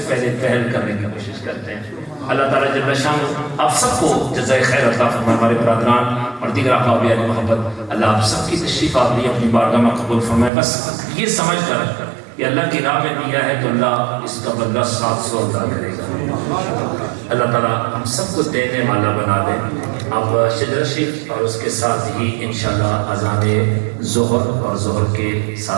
پہلے پہل کرنے کی کوشش کرتے ہیں۔ اللہ تعالیٰ جل شانہ آپ سب کو جزائے خیر عطا فرمائے۔ ہمارے برادران اور دیگر احباب یعنی محبت، اللہ آپ سب کی تشریف آوری اپنی بارگاہ میں قبول فرمائے۔ بس یہ سمجھ کر کہ اللہ کی راہ میں دیا ہے تو اللہ اس کا بدلہ 700 ادا کرے گا۔ اللہ تعالیٰ ہم سب کو دینے والا بنا دے۔ اب شجرہ شریف اور اس کے ساتھ ہی انشاءاللہ اذان ظہر، اور ظہر کے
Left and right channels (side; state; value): left; drops out; at 10.5 s